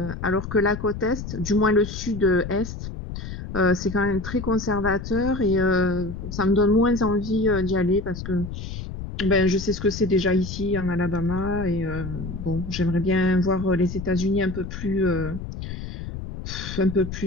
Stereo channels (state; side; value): noise; left; rumble, 8 dB below the sound